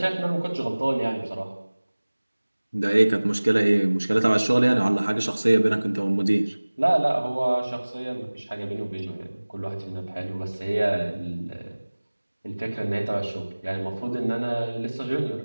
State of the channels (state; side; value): inverted; both; correlation -1.00